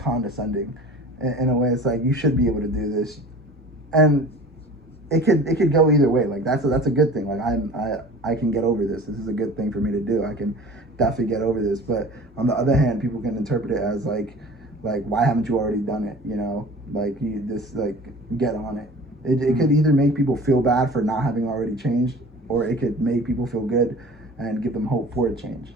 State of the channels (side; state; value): both; normal; correlation 0.42